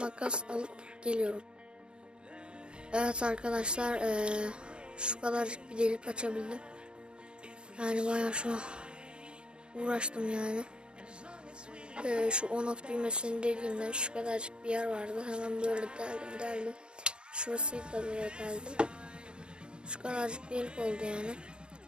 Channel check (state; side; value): late; left; 0.052 ms